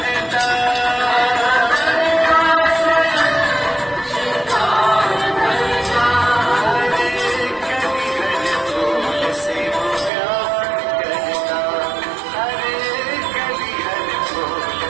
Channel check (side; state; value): left; drops out; at 10.1 s